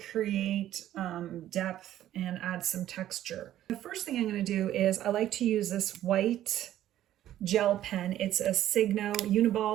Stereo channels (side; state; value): left; quieter; 12.6 dB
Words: create depth and add some texture. The first thing I'm going to do is I like to use this white gel pen. It's a